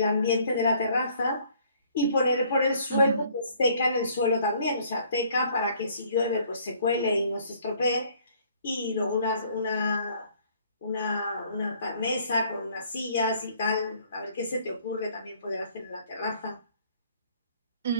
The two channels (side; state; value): both; inverted; correlation -0.60